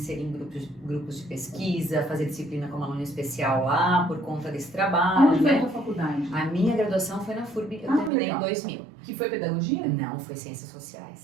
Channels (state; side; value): drops out; left; at 8.1 s